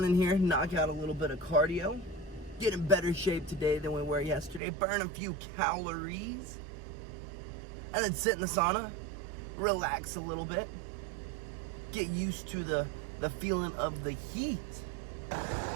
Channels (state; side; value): drops out; left; at 4.6 s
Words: in here, knock out a little bit of cardio, get in better shape today than we were yesterday, burn a few calories, and then sit in the sauna, relax a little bit, get used to the feeling of the heat.